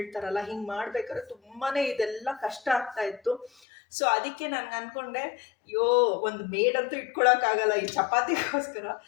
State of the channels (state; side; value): drops out; right; at 3.5 s